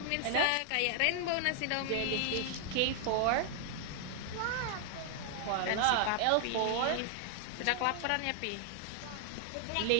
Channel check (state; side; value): different; both; correlation 0.00